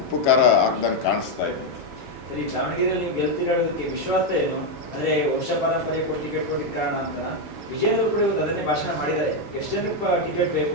ಉಪ್ಪು ಖಾರ ಹಾಕ್ದಂಗೆ ಕಾಣಿಸ್ತಾ ಇದೆ. ಸರಿ, ದಾವಣಗೆರೆಯಲ್ಲಿ ನೀವು ಗೆಲ್ತಿರೋದಕ್ಕೆ ವಿಶ್ವಾಸ ಏನು? ಅಂದರೆ ವಂಶ ಪರಂಪರೆ ಕೊಟ್ಟು ಟಿಕೆಟ್ ಕೊಟ್ಟಿದ್ದ ಕಾರಣ ಅಂತ ವಿಜಯನವರು ಕೂಡ ಅದನ್ನೇ ಭಾಷಣ ಮಾಡಿದ್ದಾರೆ. ಎಷ್ಟು ಜನಕ್ಕೆ ಟಿಕೆಟ್ ಬೇಕು,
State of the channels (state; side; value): normal; both; correlation 0.03